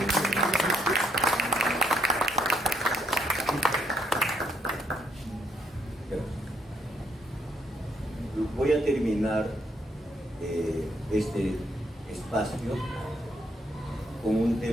Voy a terminar este espacio con un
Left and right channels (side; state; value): both; normal; correlation 0.72